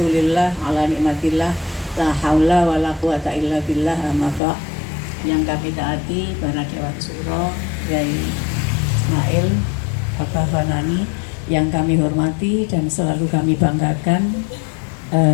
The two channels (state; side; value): drops out; right; at 4.4 s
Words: ala nikmatillah, la haula wa la quwata illa billah, amma ba'. Yang kami taati para Dewan Suro, Yai Ismail, Bapak Fanani, yang kami hormati dan selalu kami banggakan,